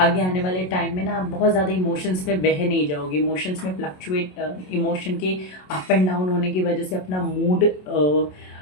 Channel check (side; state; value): right; late; 27 ms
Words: आने वाले टाइम में ना आप बहुत ज़्यादा इमोशंस में बह नहीं जाओगे। इमोशंस में फ्लक्चुएट, इमोशन के अप एंड डाउन होने की वजह से अपना मूड